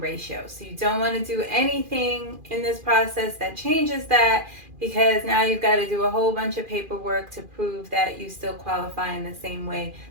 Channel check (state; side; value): late; left; 2.4 ms